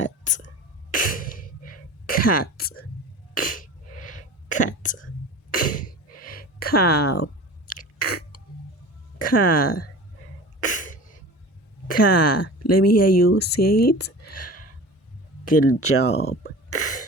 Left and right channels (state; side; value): normal; both; correlation 0.37